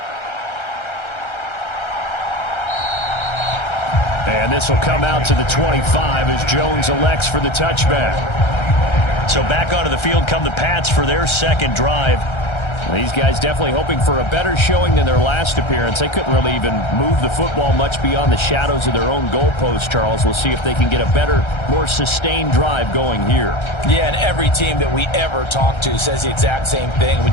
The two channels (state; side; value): late; right; 1.3 ms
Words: And this will come out to the 25 as Jones elects for the touchback. So back onto the field come the Pats for their second drive. These guys definitely hoping for a better showing than their last appearance. They couldn't really even move the football much beyond the shadows of their own goalpost, Charles. We'll see if they can get a better, more sustained drive going here. Yeah, and every team that we ever talk to says the exact same thing.